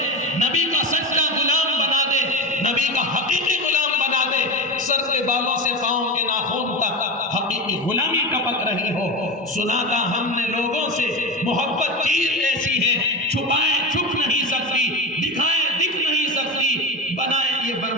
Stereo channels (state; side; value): normal; both; correlation 0.20